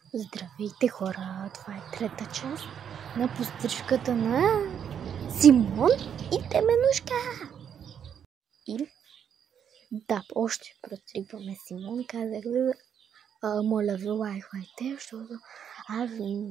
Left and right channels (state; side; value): quieter; left; 8.3 dB